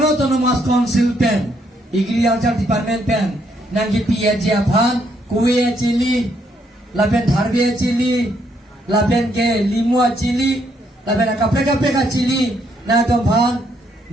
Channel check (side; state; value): both; normal; correlation 0.73